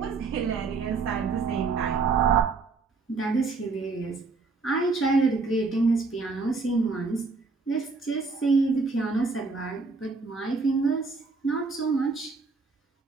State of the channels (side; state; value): left; quieter; 4.2 dB